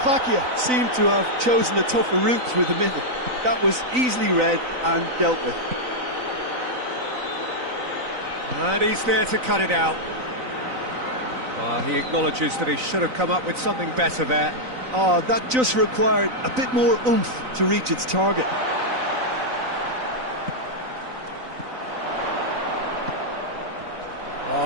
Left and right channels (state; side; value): late; left; 3.9 ms